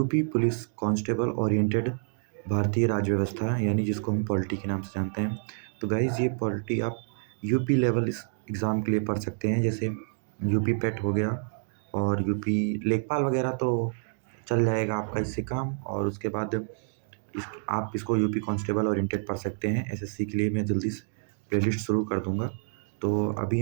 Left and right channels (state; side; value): silent; left; digital silence